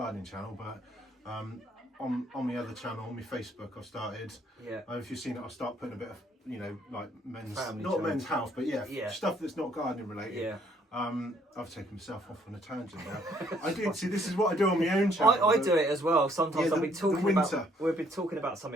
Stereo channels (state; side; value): normal; both; correlation 0.65